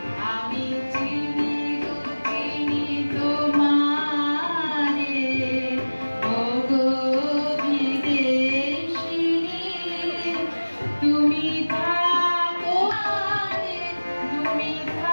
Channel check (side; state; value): both; inverted; correlation -1.00